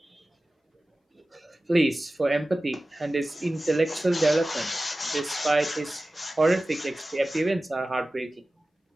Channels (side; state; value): both; normal; correlation 0.96